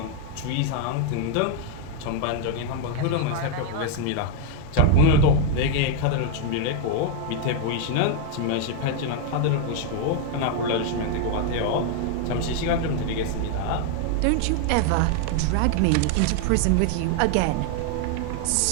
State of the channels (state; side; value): different; both; correlation 0.00